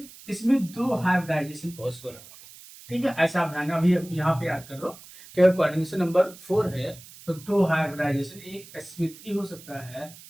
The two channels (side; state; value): right; noise; hiss, 19 dB below the sound